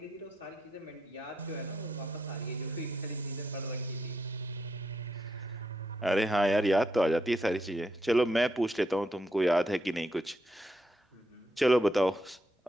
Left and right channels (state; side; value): normal; both; correlation 0.80